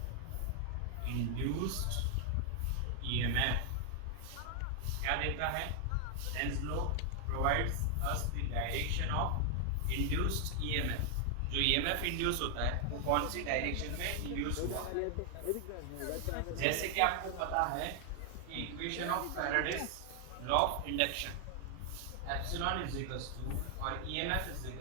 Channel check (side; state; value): both; different; correlation 0.00